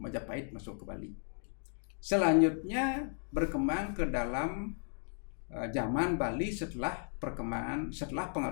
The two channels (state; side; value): silent; right; 54 dB below the other